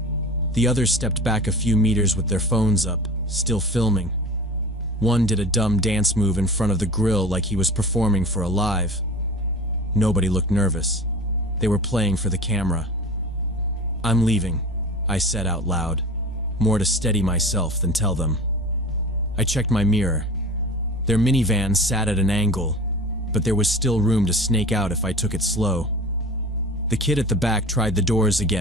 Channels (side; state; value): both; normal; correlation 0.36